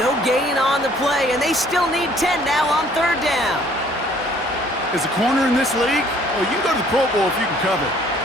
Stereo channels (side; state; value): both; normal; correlation 0.59